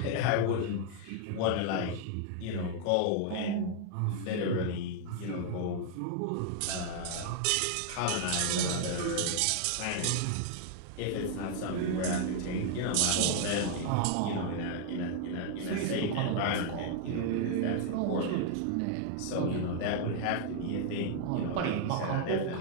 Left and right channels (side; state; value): both; different; correlation 0.00